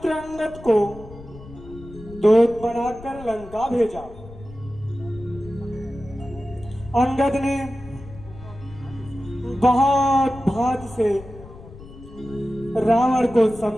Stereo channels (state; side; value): noise; left; rumble, 17 dB below the sound